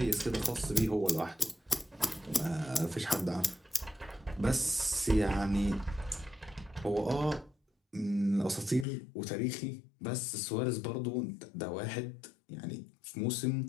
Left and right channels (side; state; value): right; drops out; at 8.8 s